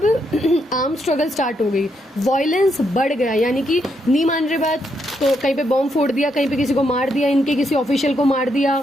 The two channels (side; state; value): both; normal; correlation 0.78